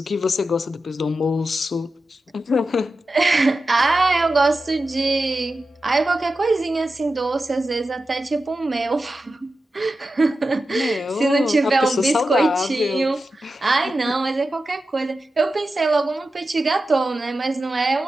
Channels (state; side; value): normal; both; correlation 0.92